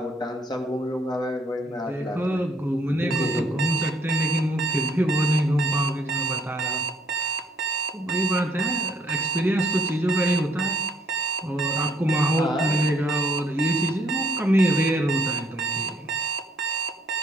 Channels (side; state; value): both; normal; correlation 0.66